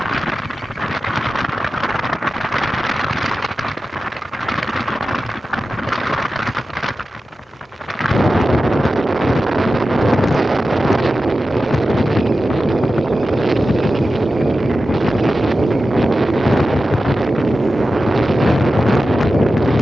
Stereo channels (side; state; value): both; normal; correlation 0.93